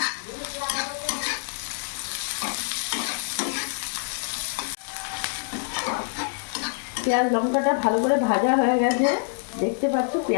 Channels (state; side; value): silent; right; digital silence